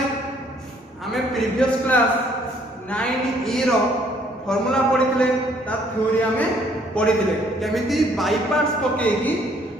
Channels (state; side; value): normal; both; correlation 0.63